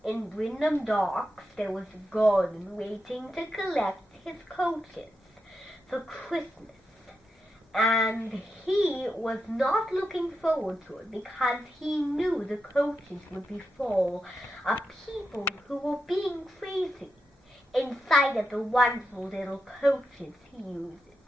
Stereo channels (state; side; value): normal; both; correlation 0.87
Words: in Wyndham Docks, there was Gordon waiting to collect his coaches for Christmas. And he was not looking forward to it because he knew the coaches would be full of people who were being crazy inside of the wonderful little coaches he uses.